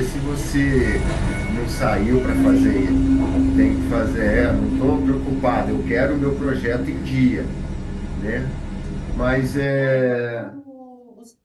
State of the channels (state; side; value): identical; both; correlation 1.00